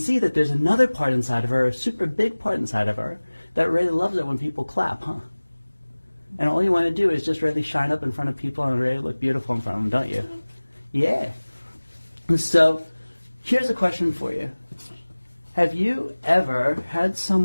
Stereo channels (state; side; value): inverted; both; correlation -1.00